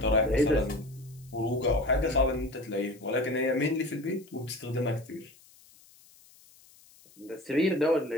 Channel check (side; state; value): left; noise; hiss, 26 dB below the sound